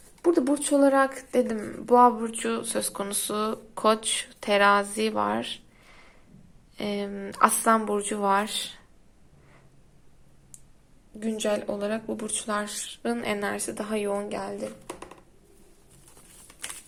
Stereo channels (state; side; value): identical; both; correlation 1.00